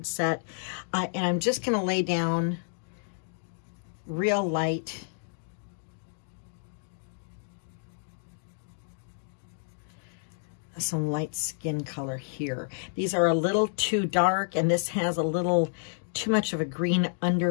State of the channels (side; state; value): right; silent; digital silence